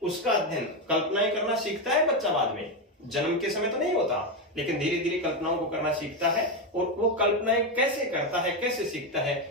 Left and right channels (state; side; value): normal; both; correlation 0.10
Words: उसका अध्ययन, कल्पनाएं करना सीखता है बच्चा बाद में, जन्म के समय तो नहीं होता, लेकिन धीरे धीरे कल्पनाओं को करना सीखता है, और वो कल्पनाएं कैसे करता है, कैसे सीखता